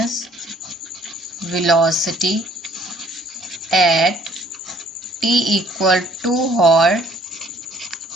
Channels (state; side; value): normal; both; correlation 0.59